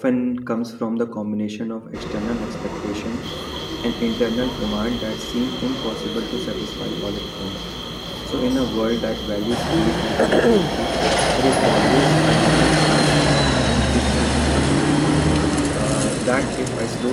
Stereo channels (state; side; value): identical; both; correlation 1.00